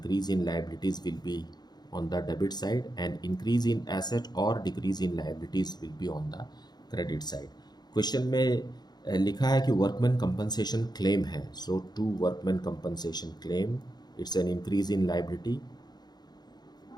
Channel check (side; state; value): right; late; 0.20 ms